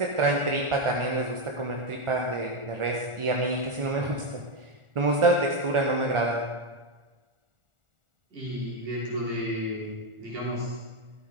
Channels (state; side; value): late; left; 1.4 ms